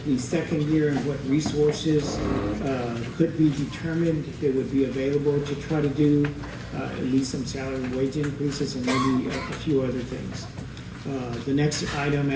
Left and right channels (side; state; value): both; identical; correlation 1.00